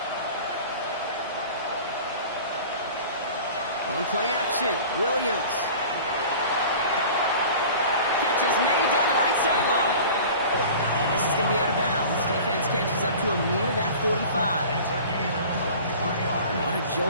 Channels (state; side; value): inverted; both; correlation -0.41